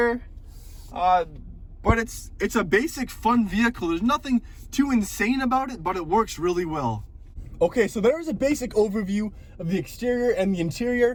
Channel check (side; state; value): both; identical; correlation 1.00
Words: But it's a basic fun vehicle. There's nothing too insane about it, but it works really well. Okay, so there is a basic overview of the exterior and the